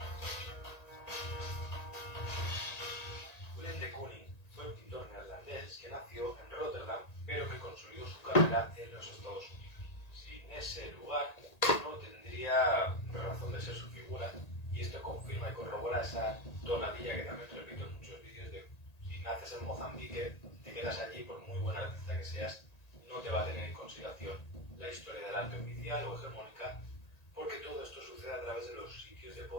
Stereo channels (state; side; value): late; right; 1.8 ms